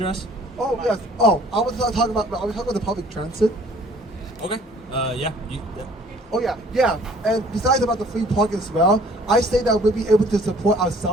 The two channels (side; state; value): both; normal; correlation 0.55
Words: Oh yes. Oh, I was talking about the public transit. Okay. Yeah. Oh yeah. And besides about the free parking as well, I say that we'll be able to support our